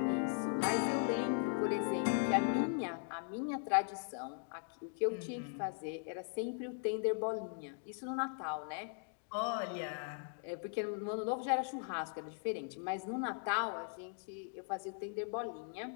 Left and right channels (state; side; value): silent; right; 52 dB below the other